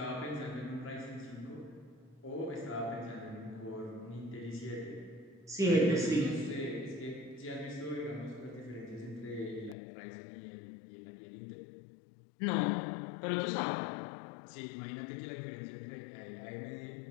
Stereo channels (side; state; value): right; drops out; at 9.8 s